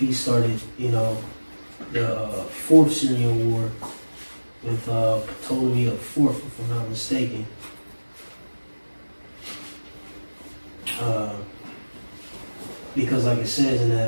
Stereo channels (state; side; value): inverted; both; correlation -1.00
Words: started, you know, the Fourth Syrian War with Ptolemy the Fourth, if I'm not mistaken. Because like it says in